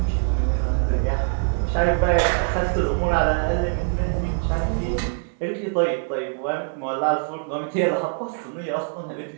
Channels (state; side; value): silent; left; 58 dB below the other